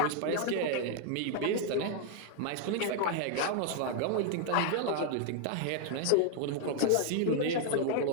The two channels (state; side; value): different; both; correlation 0.00